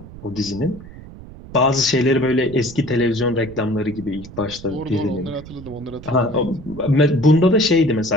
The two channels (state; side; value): noise; right; rumble, 16 dB below the sound